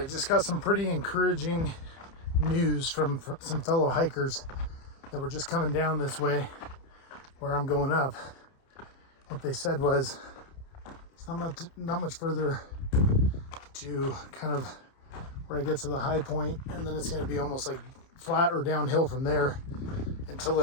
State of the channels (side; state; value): right; late; 30 ms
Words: just got some pretty encouraging news from some fellow hikers that were just coming down this way where I'm going up. What they said was it's not much further to kind of where I get to the high point, and then it's going to be almost like flat or downhill from there until